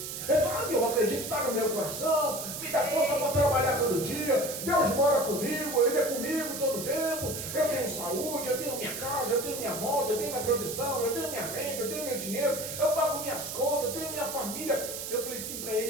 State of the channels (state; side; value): noise; right; hiss, 6 dB below the sound